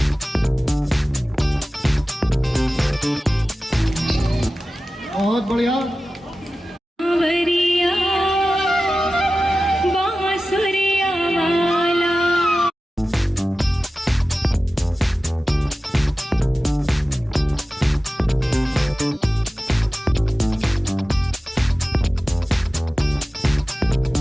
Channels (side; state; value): both; normal; correlation 0.95